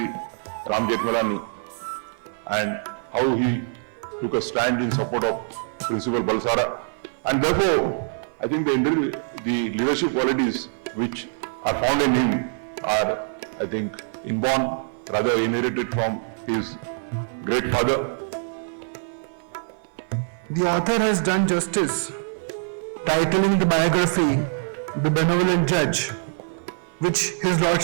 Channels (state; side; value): silent; left; 56 dB below the other